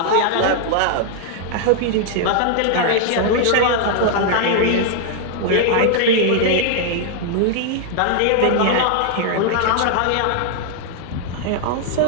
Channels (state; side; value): different; both; correlation -0.01